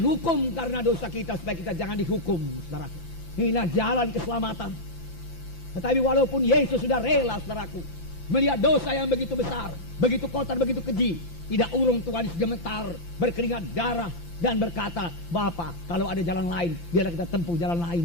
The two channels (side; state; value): right; late; 5.9 ms